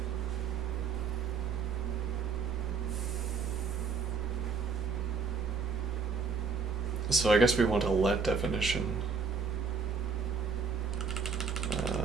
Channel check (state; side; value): quieter; left; 5.2 dB